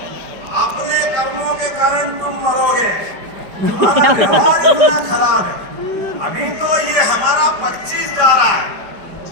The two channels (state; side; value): late; left; 5.1 ms